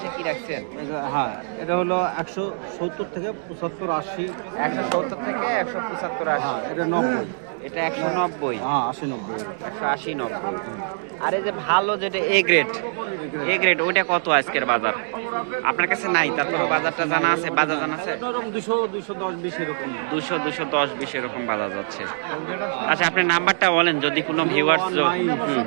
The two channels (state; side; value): silent; left; digital silence